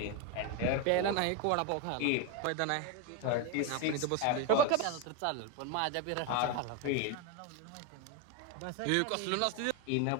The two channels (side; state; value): both; different; correlation 0.02